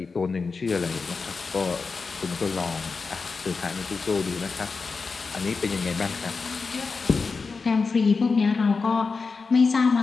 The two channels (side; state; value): right; quieter; 4.6 dB